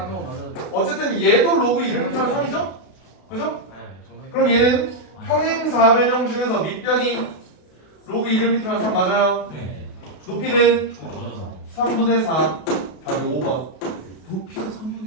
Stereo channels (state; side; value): late; right; 32 ms